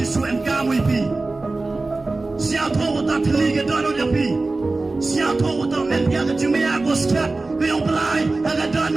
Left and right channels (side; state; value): left; quieter; 3.3 dB